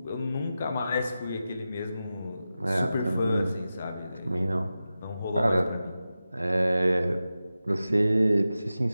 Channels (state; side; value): inverted; both; correlation -0.93